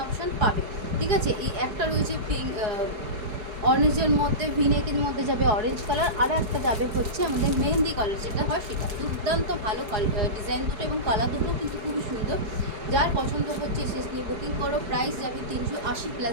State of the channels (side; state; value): left; late; 4.7 ms